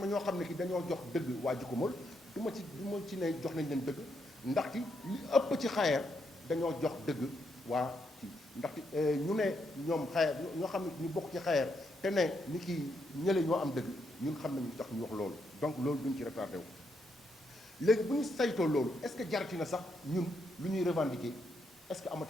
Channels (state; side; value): normal; both; correlation 0.79